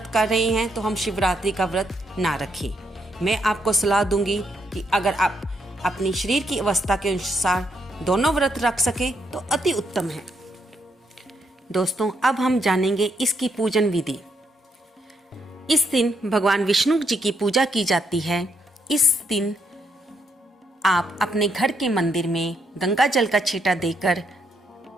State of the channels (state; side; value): normal; both; correlation 0.77